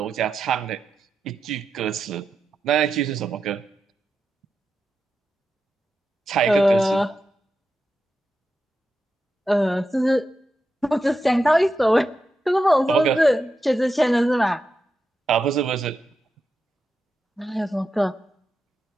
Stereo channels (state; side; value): normal; both; correlation 0.88